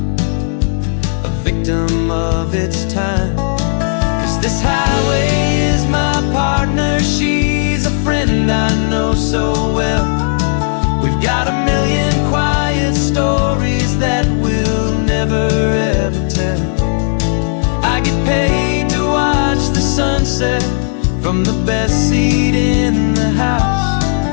a victim of its time. 'Cause this highway is my partner, she's a friend I know so well. We've got a million quiet stories that we'll never ever tell. I get paid to watch the sunset from the best seat in the house,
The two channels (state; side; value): silent; right; digital silence